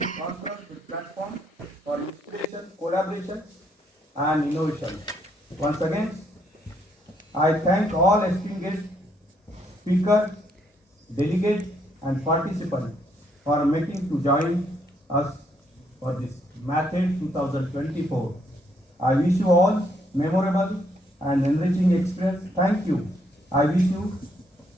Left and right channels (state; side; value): normal; both; correlation 0.72